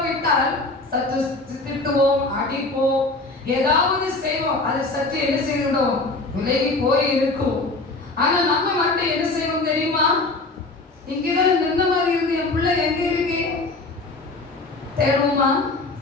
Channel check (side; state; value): right; quieter; 3.2 dB